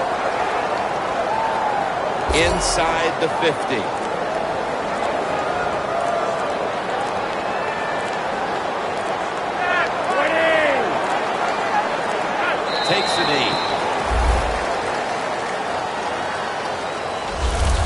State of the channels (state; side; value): identical; both; correlation 1.00